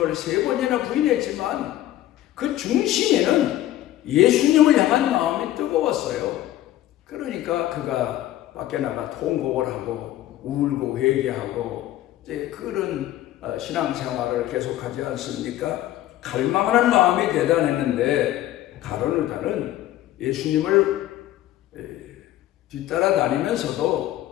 3번이나 부인했지만 그 중심에는 예수님을 향한 마음이 뜨거웠어요. 그러니까 그가 밖에 나가 통곡을 하고 울고 회개하고 이제 그런 신앙생활을 계속하지 않습니까? 갈망하는 마음이 대단했는데 가룟 유다는 예수님을 뒤따라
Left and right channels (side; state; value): right; quieter; 13.9 dB